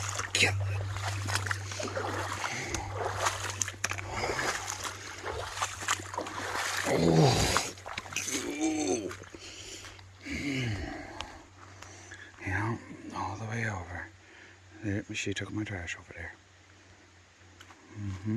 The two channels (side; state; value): both; identical; correlation 1.00